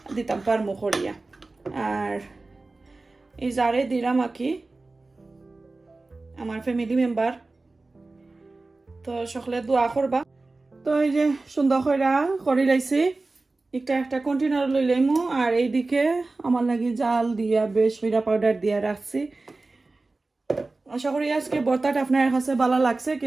দিতাম পারমু করিয়া আর এই যারে দিলাম আকি আমার ফ্যামিলি মেম্বার তো সকলে দোয়া করবা তো এই যে সুন্দর করে লাইছি একটা কন্টেনার লই লাইমু আর এইদিকে আমার লাগি জাল দিয়া বেশ হইরা পাউডার দিয়া রাখছি আশা করি আজকে ভর্তাটা আপনার কাছে ভালো লাগছে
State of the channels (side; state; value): left; quieter; 3.4 dB